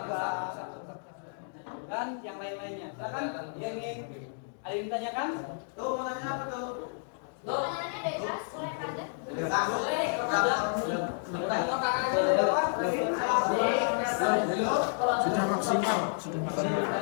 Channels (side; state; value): right; silent; digital silence